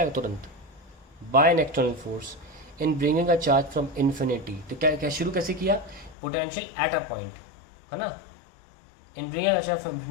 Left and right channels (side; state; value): right; drops out; at 6.2 s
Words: तुरंत। By an external force in bringing a charge from infinity. तो क्या क्या शुरू कैसे किया, पोटेंशियल एट अ पॉइंट, है ना, in bringing a charge from